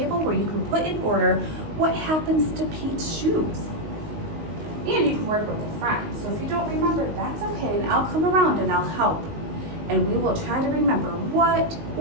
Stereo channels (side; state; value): left; late; 19 ms